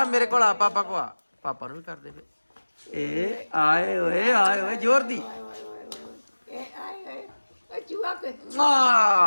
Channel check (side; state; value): both; inverted; correlation -1.00